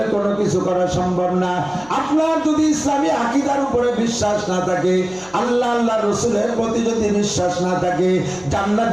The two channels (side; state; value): left; noise; hum, 24 dB below the sound